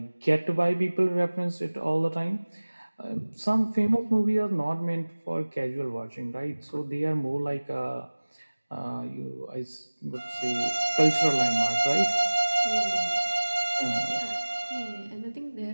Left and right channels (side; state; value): both; inverted; correlation -1.00